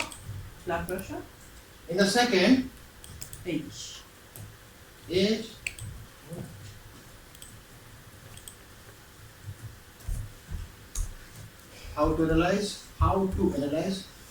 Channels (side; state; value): both; identical; correlation 1.00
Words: Blood pressure, In the second, age. age. How to analyze? How to analyze?